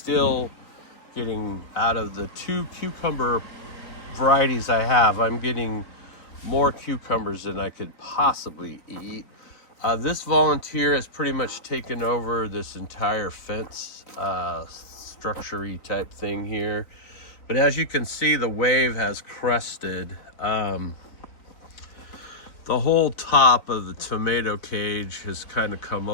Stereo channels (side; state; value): right; late; 3.9 ms